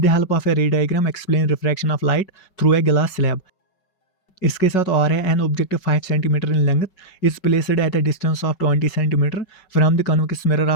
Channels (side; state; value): right; late; 5.3 ms